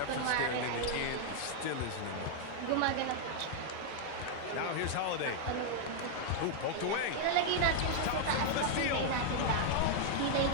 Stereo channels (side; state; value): both; different; correlation -0.01